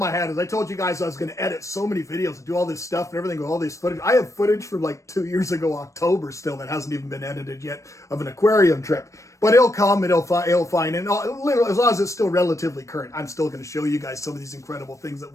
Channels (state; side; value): late; right; 0.15 ms